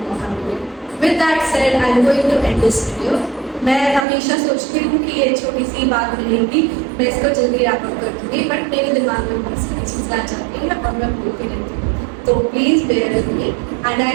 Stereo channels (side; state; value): left; drops out; at 4.0 s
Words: मौका मिले। With that said I am going to end this video. मैं हमेशा सोचती हूँ कि ये छोटी सी बात रहेगी, मैं इसको जल्दी रैप अप कर दूँगी, बट मेरे दिमाग में बहुत सारी चीज़ें आ जाती हैं और मैं भूलती रहती हूँ। So please bear with me, and I